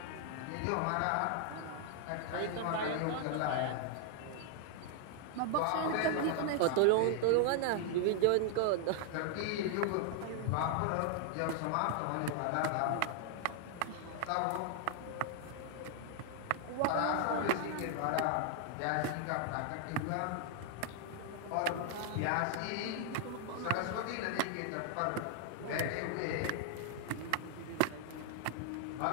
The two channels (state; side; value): different; both; correlation 0.00